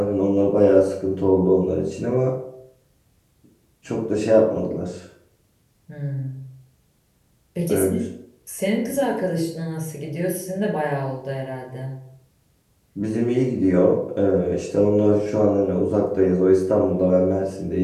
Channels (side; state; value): both; identical; correlation 1.00